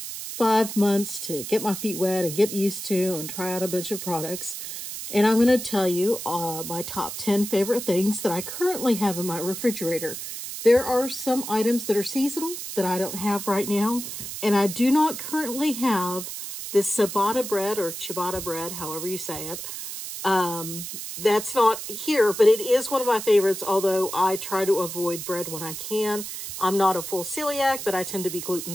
5 months to get my feet wet and get used to and try out a bunch of products. And I'm going to tell you my top 10 favorite things that I currently have in my refrigerator. There are some items that are seasonal that I don't have right now. And I do not currently have this ciabatta bread or ciabatta bread, however you say it. That's not here, but it is one of my favorites, although I try to avoid bread when I can. I'm not a full celiac, but I tend to be gluten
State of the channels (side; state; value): right; noise; hiss, 8 dB below the sound